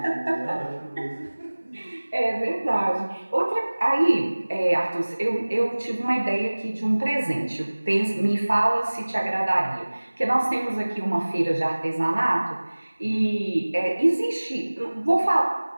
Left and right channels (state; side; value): inverted; both; correlation -1.00